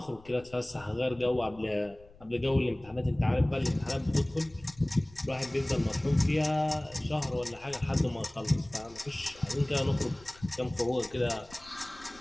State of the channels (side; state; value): left; noise; rumble, 23 dB below the sound